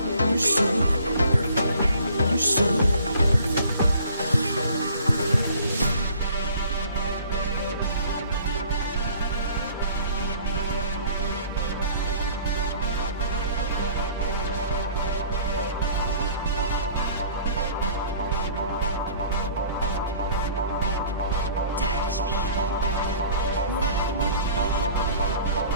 Touch me, rub me,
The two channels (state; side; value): inverted; both; correlation -0.52